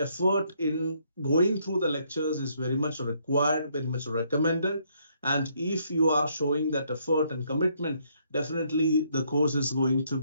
in going through the lectures is very much required, very much recommended. And if you are showing that effort and commitment, definitely the course is going to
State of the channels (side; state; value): both; inverted; correlation -0.71